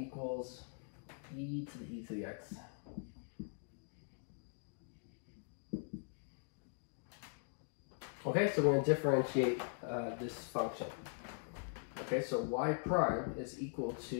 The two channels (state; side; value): silent; right; digital silence